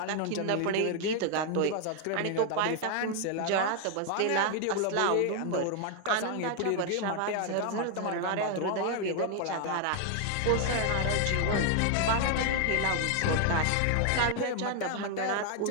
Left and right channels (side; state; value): both; different; correlation 0.00